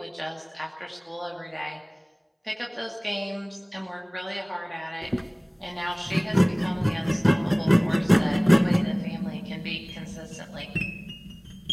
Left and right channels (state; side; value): identical; both; correlation 1.00